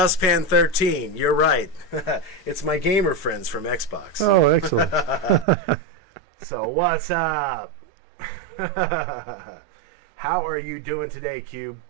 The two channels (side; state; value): left; drops out; at 5.5 s